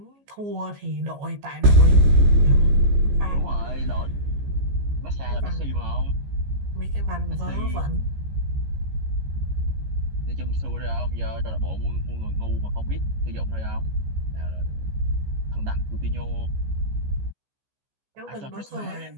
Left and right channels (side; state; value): left; late; 14 ms